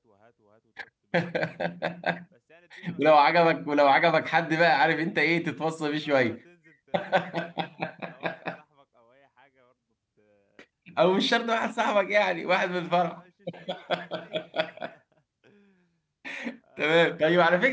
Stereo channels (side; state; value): both; identical; correlation 1.00